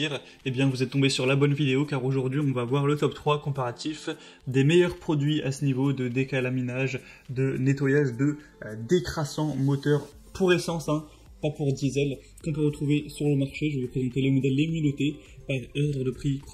eh bien vous êtes tombé sur la bonne vidéo car aujourd'hui on va voir le top 3 comparatif des meilleurs produits à ce niveau de décalaminage, de nettoyage de décrassant moteur pour essence, pas pour diesel, qu'on peut retrouver sur le marché. Je vais vous présenter les modèles les mieux notés par ordre de prix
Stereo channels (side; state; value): both; identical; correlation 1.00